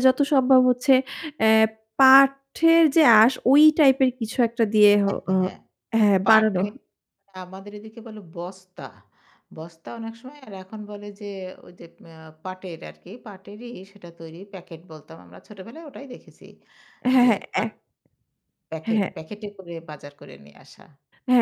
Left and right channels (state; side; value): identical; both; correlation 1.00